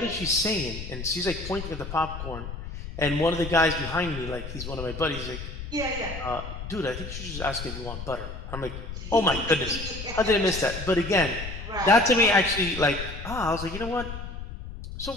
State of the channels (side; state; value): left; noise; rumble, 9 dB below the sound